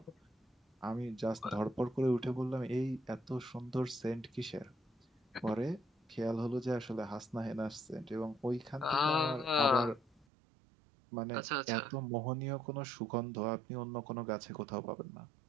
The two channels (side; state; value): left; drops out; at 10.2 s